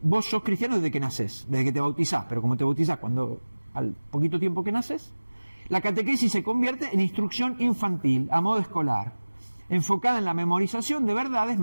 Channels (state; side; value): inverted; both; correlation -1.00